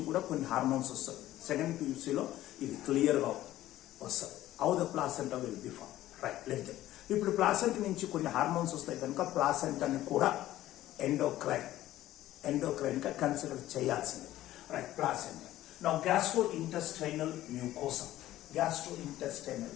కూడా కొన్ని హార్మోన్స్ వస్తాయి. సెకండ్ PUCలో ఇది క్లియర్గా వస్తుంది. How the placenta will be form. Right, let them. ఇప్పుడు ప్లాసెంట్ నుంచి కొన్ని హార్మోన్స్ వస్తాయి కనుక ప్లాసెంటాని కూడా ఎండోక్రైన్గా కన్సిడర్ చేయాల్సింది. Right, placenta. Now, gastrointestinal mucosa,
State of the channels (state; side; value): quieter; right; 14.5 dB